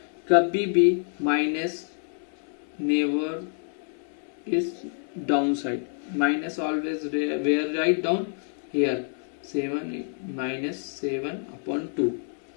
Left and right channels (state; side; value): silent; right; 58 dB below the other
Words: कभी भी minus never is down side, minus always wear write down here, 7 -7/2